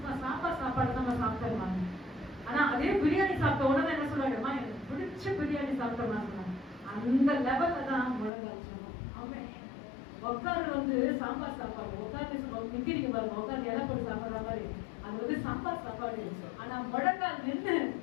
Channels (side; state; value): right; drops out; at 8.3 s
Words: சாம்பார் சாப்பாடு நம்ம சாப்பிட்டோம். ஆனா அதே பிரியாணி சாப்பிட்ட உடனே என்ன சொல்லுவாங்க, அம்மா எனக்கு பிடிச்ச பிரியாணி சாப்பிட்டோம். அந்த லெவல்ல தான் முழங்கால் ஜெபம். ஆமென். உட்கார்ந்து வந்து சாம்பார் சாப்பாடு உட்கார்ந்து நிக்கிறீங்க பாருங்க, உட்கார்ந்து இலை போட்டு சாப்பிடுற மாதிரி அது வந்து சாம்பார் சாப்பாடு. ஆனா முழங்கால் நின்று